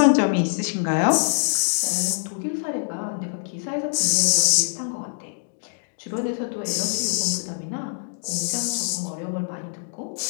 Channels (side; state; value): right; silent; digital silence